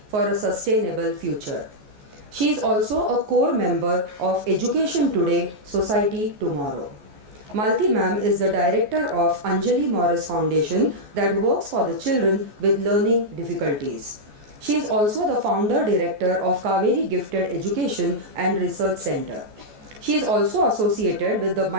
for a sustainable future. She is also a core member of Education Today, Society Tomorrow. Malti ma'am is the director of Anjali Morris Foundation that works for the children with learning difficulties. She is also the founder director of Kaveri Gifted Education and Research Center. She is also associated with the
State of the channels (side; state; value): left; late; 14 ms